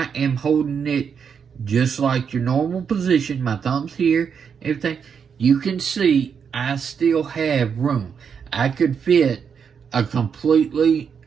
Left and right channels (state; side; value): quieter; left; 6.8 dB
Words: am holding it just like your normal position, my thumb's here, everything, you can see I still have room. I could fit a completely